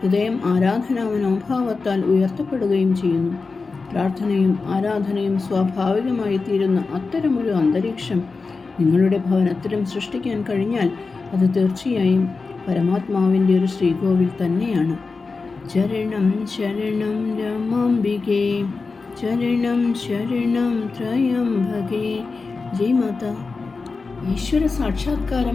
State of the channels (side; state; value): right; quieter; 4.3 dB